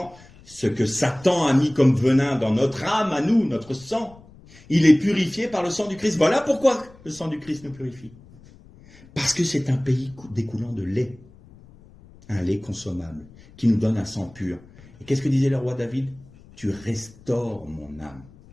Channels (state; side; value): noise; left; rumble, 24 dB below the sound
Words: ce que Satan a mis comme venin dans notre âme, à nous, notre sang, il est purifié par le sang du Christ. Voilà pourquoi le sang du Christ nous purifie. Parce que c'est un pays découlant de lait, un lait consommable, qui nous donne un sang pur. Et qu'est-ce que disait le roi David? Tu restaures mon âme,